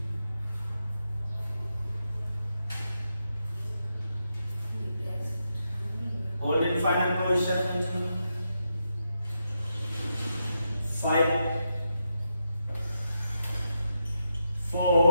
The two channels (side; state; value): both; inverted; correlation -0.84